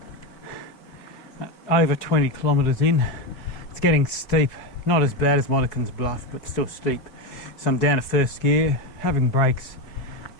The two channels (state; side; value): late; right; 4.7 ms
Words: over 20 kilometres in, it's getting steep. Not as bad as Monaghans Bluff, but still steep. So I'm down to first gear, having breaks,